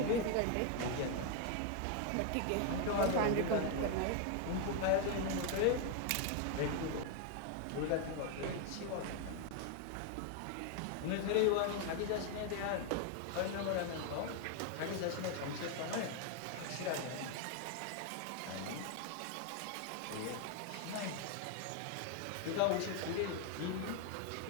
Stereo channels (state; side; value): different; both; correlation 0.01